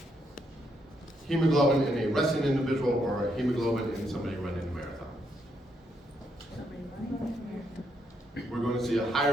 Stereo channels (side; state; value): both; normal; correlation 0.77